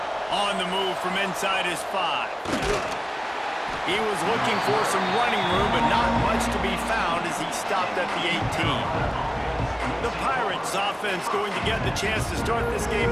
On the move from inside his 5. He was looking for some running room, but not much to be found as he stopped at the 18. The Pirates offense going to get the chance to start this game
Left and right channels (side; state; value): both; identical; correlation 1.00